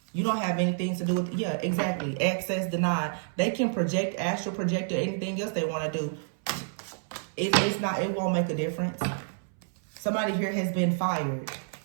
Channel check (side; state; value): left; silent; 59 dB below the other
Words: You don't have anything to do with, yeah, exactly. Access denied. They can project, astral project, or anything else they want to do. It won't make a difference. Somebody here has been fired.